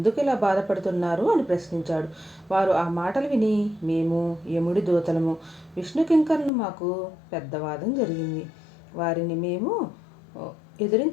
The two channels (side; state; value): right; drops out; at 6.5 s